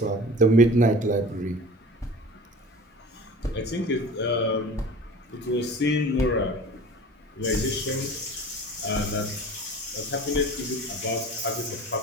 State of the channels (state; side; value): normal; both; correlation 0.40